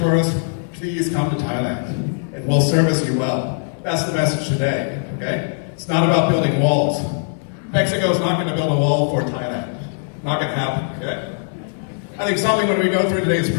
please come to Thailand, and we'll service you well. That's the message today, okay? It's not about building walls. Mexico's not going to build a wall for Thailand. Not going to happen, okay? I think something when we go through today's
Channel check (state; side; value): silent; right; digital silence